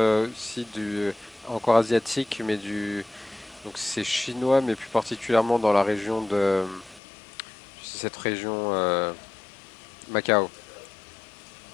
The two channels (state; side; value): drops out; right; at 7.0 s